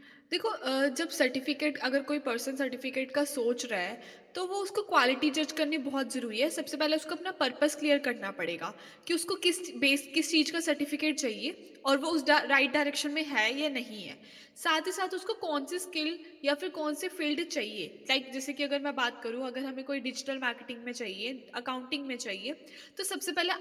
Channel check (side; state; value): both; identical; correlation 1.00